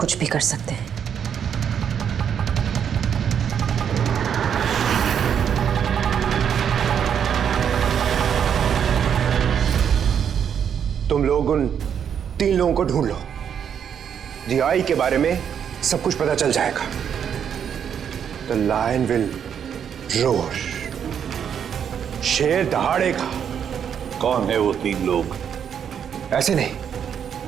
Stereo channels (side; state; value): left; quieter; 8.2 dB